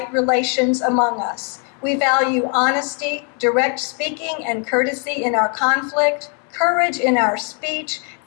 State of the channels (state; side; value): quieter; right; 39.8 dB